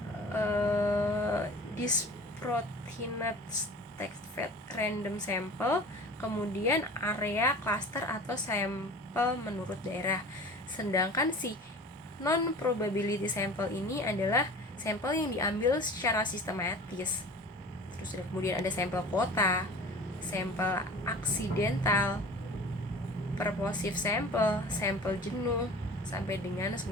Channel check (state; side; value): normal; both; correlation 0.40